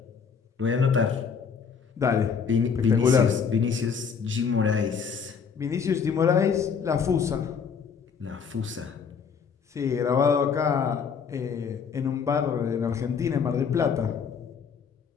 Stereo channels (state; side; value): quieter; right; 6.3 dB